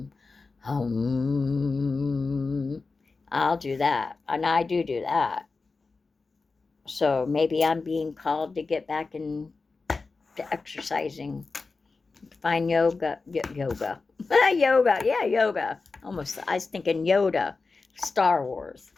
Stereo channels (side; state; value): right; quieter; 4.1 dB